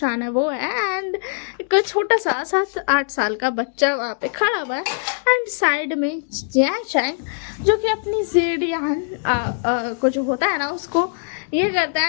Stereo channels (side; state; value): right; silent; digital silence